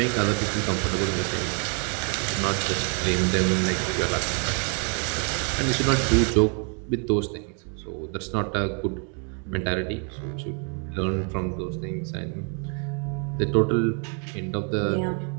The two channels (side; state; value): left; quieter; 39.3 dB